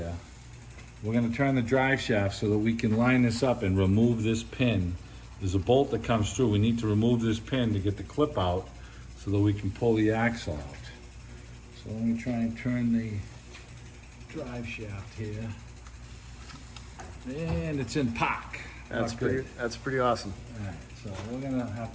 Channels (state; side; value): identical; both; correlation 1.00